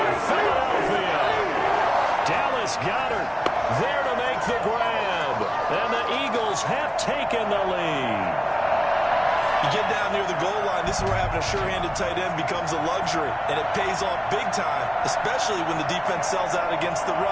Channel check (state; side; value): identical; both; correlation 1.00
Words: Philadelphia. Dallas Goedert there to make the grab. And the Eagles have taken the lead. You get down near the goal line, this is where having a sure-handed tight end becomes a luxury, and it pays off big time, especially when the defense sells out against the